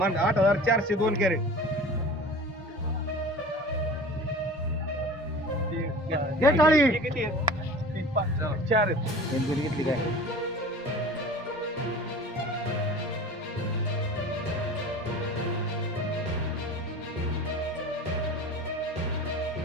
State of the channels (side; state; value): both; normal; correlation 0.39